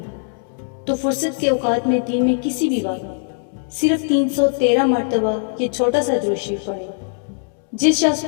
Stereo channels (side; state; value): right; silent; 64 dB below the other